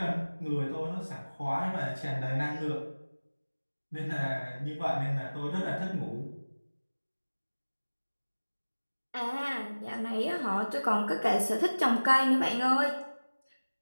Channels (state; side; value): inverted; both; correlation -1.00